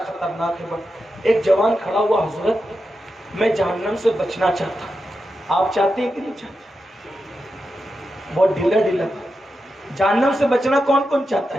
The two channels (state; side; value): normal; both; correlation 0.89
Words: ہے. ایک جوان کھڑا ہوا, حضرت میں جہنم سے بچنا چاہتا ہوں, آپ چاہتے ہیں کہ نہیں چاہتے؟ بہت ڈھیلا ڈھیلا. جہنم سے بچنا کون کون چاہتا